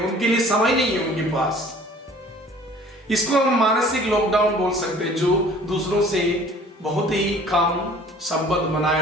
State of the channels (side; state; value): both; normal; correlation 0.50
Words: लिए समय नहीं है उनके पास। इसको हम मानसिक लॉकडाउन बोल सकते हैं, जो दूसरों से बहुत ही कम संबंध बनाए